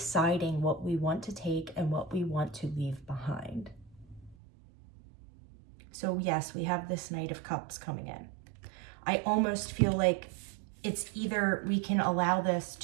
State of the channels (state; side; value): drops out; left; at 4.4 s